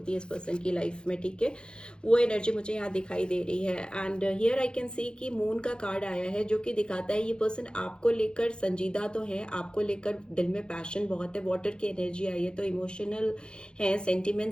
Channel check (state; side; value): late; right; 0.049 ms